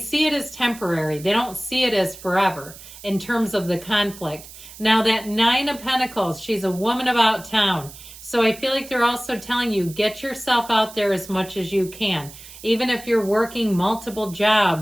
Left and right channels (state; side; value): noise; right; hiss, 17 dB below the sound